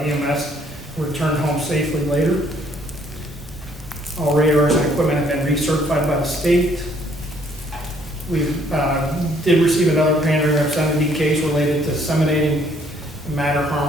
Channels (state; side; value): normal; both; correlation 0.64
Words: returned home safely later. All radars and equipment have been recertified by the state. We did receive another pandering obscenity case related to disseminating matter